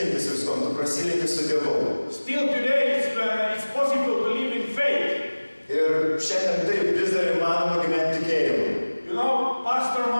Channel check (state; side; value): inverted; both; correlation -1.00